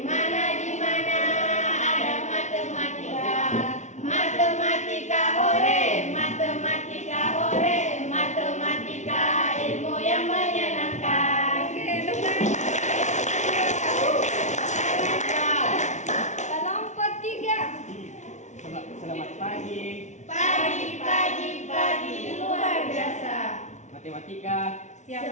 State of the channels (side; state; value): right; late; 0.34 ms